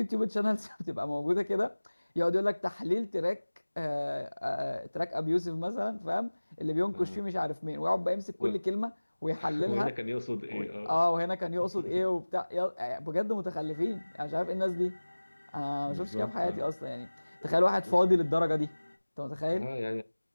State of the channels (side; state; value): both; inverted; correlation -1.00